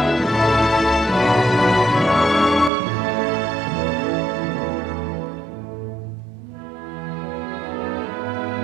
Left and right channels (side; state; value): left; drops out; at 2.7 s